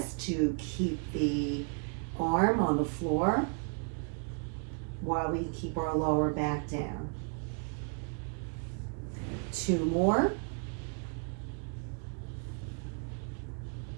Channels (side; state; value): left; quieter; 39.4 dB